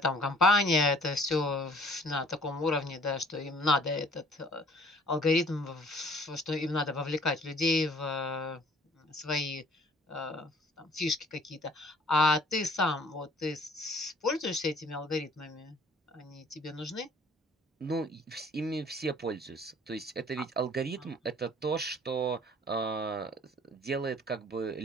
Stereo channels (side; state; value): both; normal; correlation 0.55